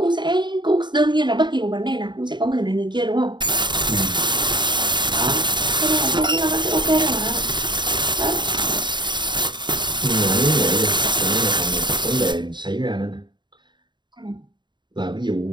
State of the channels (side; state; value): left; late; 0.22 ms